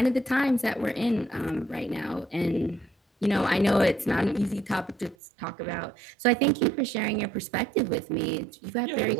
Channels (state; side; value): drops out; left; at 5.2 s